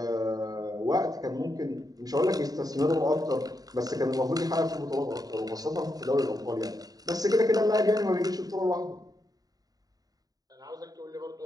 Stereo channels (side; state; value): left; late; 0.18 ms